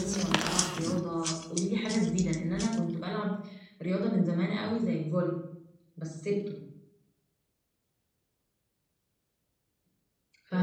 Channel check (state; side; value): identical; both; correlation 1.00